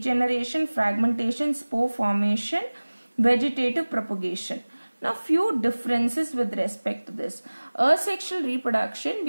fragmentation, spore formation, vegetative propagation. Now, few differences with respect to this. Asexual reproduction,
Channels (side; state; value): both; inverted; correlation -1.00